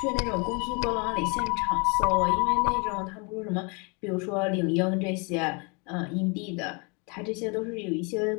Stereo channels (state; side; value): quieter; right; 32.1 dB